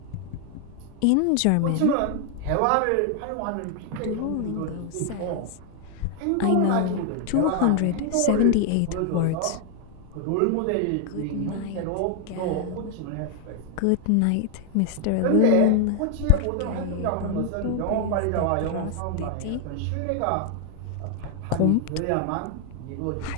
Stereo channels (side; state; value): both; different; correlation 0.00